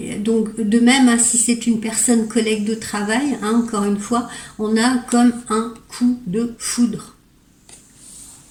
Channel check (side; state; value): both; identical; correlation 1.00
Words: donc de même, hein, si c'est une personne collègue de travail, hein, encore une fois, on a comme un coup de foudre.